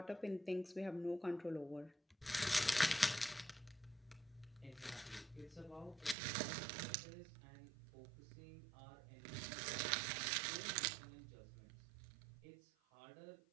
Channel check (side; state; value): left; drops out; at 6.2 s